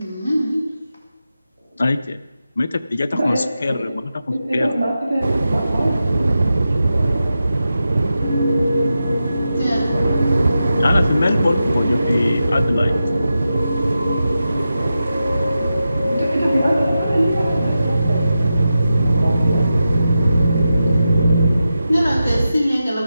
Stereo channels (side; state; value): both; inverted; correlation -0.90